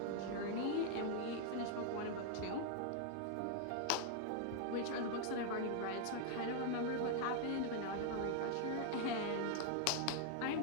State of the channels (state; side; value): different; both; correlation 0.00